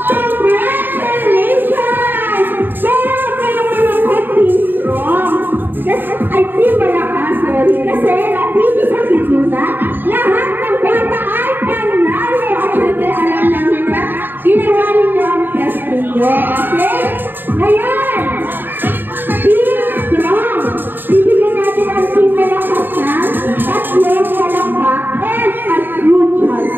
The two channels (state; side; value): late; left; 0.094 ms